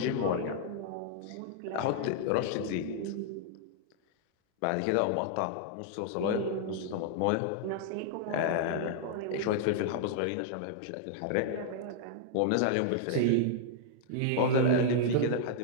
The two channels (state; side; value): different; both; correlation -0.01